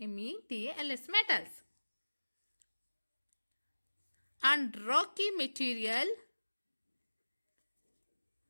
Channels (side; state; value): both; inverted; correlation -1.00